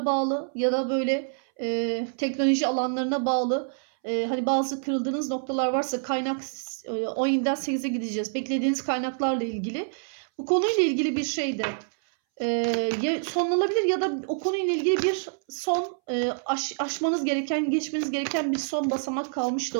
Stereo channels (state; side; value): silent; left; 60 dB below the other